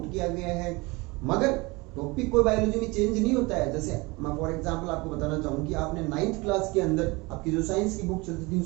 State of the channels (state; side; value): quieter; left; 24.7 dB